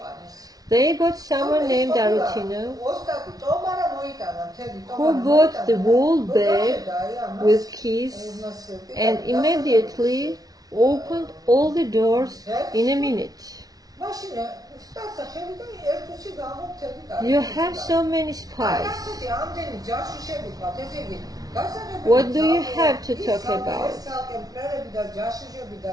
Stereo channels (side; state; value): left; late; 0.18 ms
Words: They got someone named Arutino who bought the whole bag with keys and immediately opened all the doors in a minute. You have so many spies. What do you have to talk about?